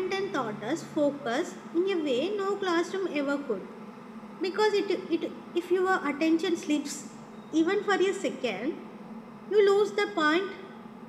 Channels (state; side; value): identical; both; correlation 1.00